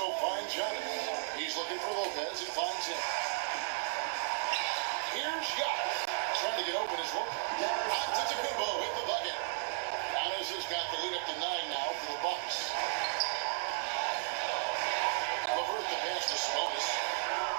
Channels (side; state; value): left; silent; digital silence